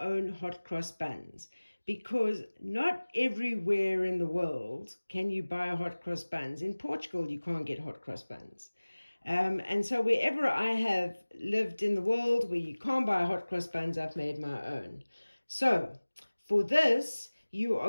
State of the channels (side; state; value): both; inverted; correlation -1.00